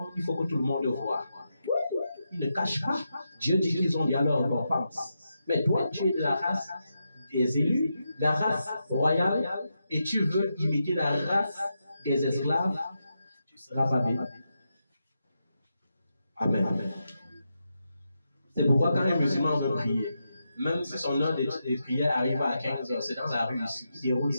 il faut que tout le monde le voie. Ils ne cachent pas. Dieu dit qu'ils ont déjà leur récompense. Mais toi, tu es de la race des élus, la race royale, et tu veux imiter la race des esclaves, tu seras pas bien. Amen. C'est pourquoi quand un musulman veut prier, même si son heure de prière arrive à 15h, c'est dans la rue ici, il déroule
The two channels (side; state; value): both; inverted; correlation -0.86